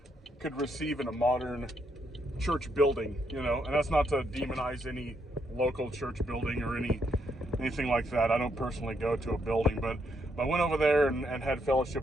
receive in a modern church building, and that's not to demonize any local church building or anything like that. I don't personally go to a building, but I went over there and had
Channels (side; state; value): both; normal; correlation 0.76